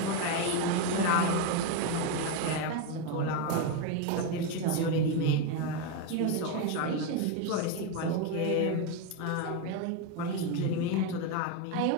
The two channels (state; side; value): different; both; correlation 0.03